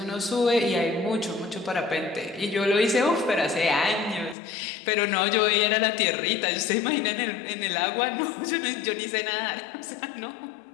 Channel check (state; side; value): drops out; right; at 4.4 s